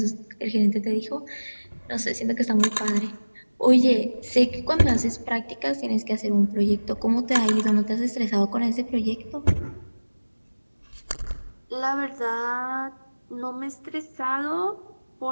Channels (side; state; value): both; inverted; correlation -1.00